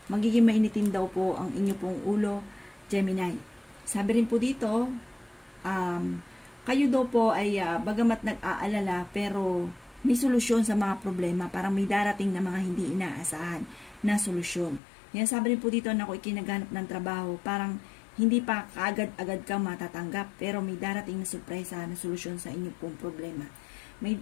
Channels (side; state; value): right; drops out; at 14.8 s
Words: Magiging mainitin daw po ang inyo pong ulo, Gemini. Sabi rin po dito, kayo daw po ay bagamat nag-aalala pero may solusyon sa mga problema. Parang may darating na mga hindi inaasahan na solusyon. Yan sabi rin po dito na kung ikinaghanap ng trabaho, parang Hindi pa kaagad-agad ka matatanggap, pero may darating na surpresa na solusyon sa inyong pong problema. May